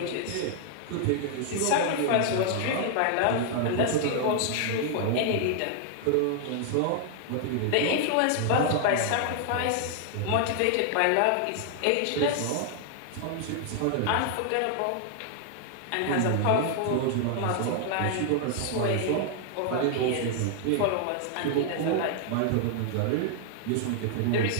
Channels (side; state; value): both; different; correlation 0.00